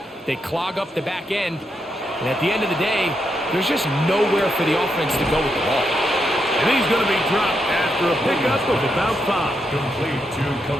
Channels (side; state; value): both; normal; correlation 0.82